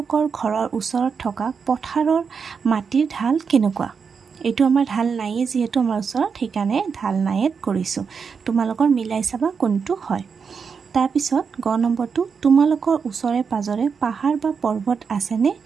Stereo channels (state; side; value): quieter; left; 5.9 dB